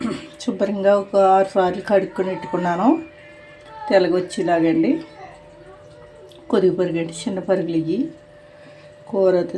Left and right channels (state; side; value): identical; both; correlation 1.00